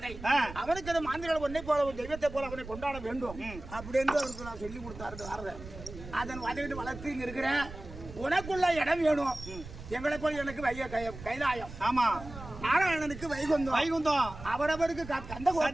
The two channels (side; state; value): right; noise; rumble, 13 dB below the sound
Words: அவனுக்கு அந்த மாந்திரிகள் ஒன்னை போல ஒரு தெய்வத்தை போல அவனை கொண்டாட வேண்டும் அப்படின்னு அவருக்கு நான் சொல்லி கொடுத்தாரு. அதன் வதையிட்டு வளர்த்து இங்க இருக்கிற உனக்குள்ள இடம் வேணும். எங்களை போல எனக்கு கைலாயம். ஆமா, நாராயணனுக்கு வைகுந்தம் அவரவருக்கு